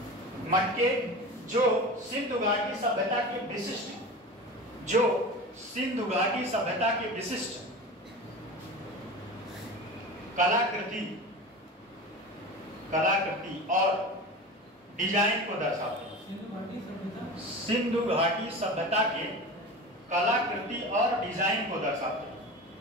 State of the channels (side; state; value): both; normal; correlation 0.31